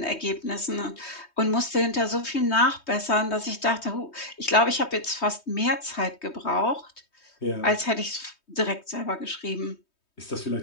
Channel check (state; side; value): late; right; 3.2 ms